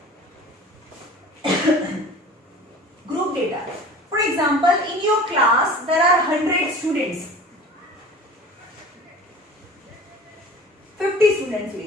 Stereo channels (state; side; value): normal; both; correlation 0.41